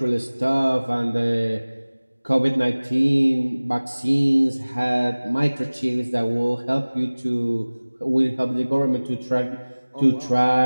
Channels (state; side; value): inverted; both; correlation -1.00